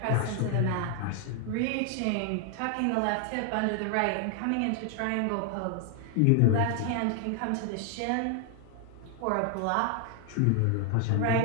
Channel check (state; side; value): different; both; correlation 0.00